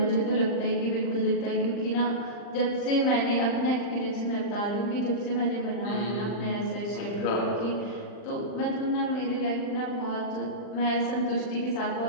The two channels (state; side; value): late; right; 39 ms